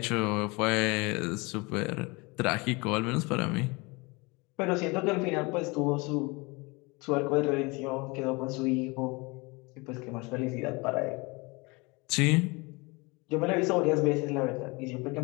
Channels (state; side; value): quieter; right; 26.4 dB